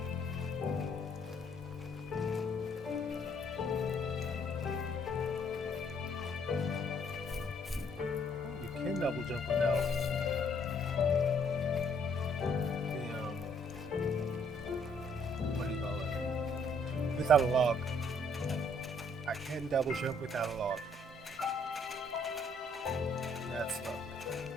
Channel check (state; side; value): normal; both; correlation 0.66